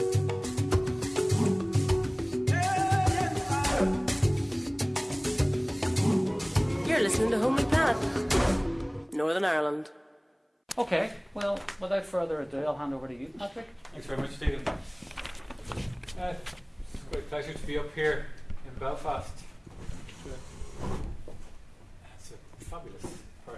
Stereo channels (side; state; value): both; identical; correlation 1.00